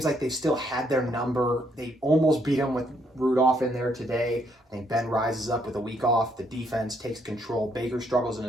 like they've still had their number. They almost beat him with Rudolph in there today. I think Ben rises up with a week off. The defense takes control. Baker struggles in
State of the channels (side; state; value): both; normal; correlation 0.72